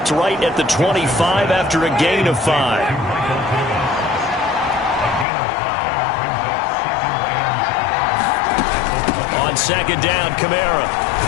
right at the 25 after a gain of 5. On 2nd down, Kamara.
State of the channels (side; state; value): right; drops out; at 5.2 s